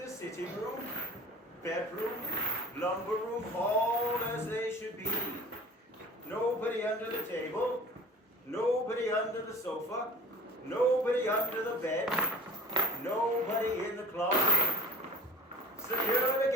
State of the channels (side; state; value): both; normal; correlation 0.44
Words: sitting room, bedroom, lumber room, all as they should be. Nobody under the table, nobody under the sofa, nobody under the bed, nobody in the closet. Secure